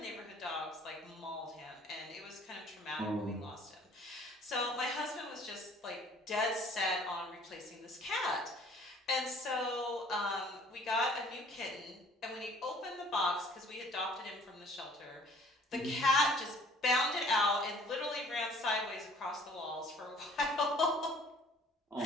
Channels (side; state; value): both; normal; correlation 0.54